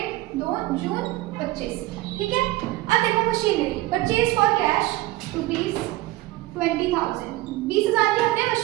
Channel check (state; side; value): quieter; left; 18.0 dB